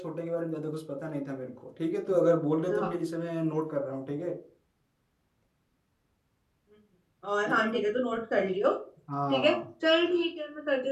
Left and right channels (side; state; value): both; identical; correlation 1.00